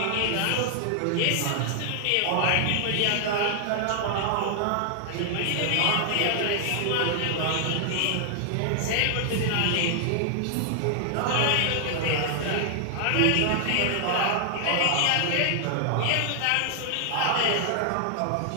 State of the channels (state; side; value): different; both; correlation 0.00